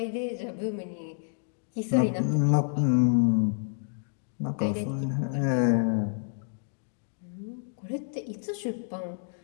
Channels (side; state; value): right; silent; digital silence